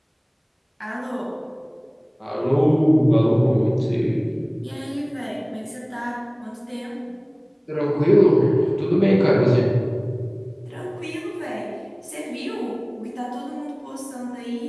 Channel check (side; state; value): both; identical; correlation 1.00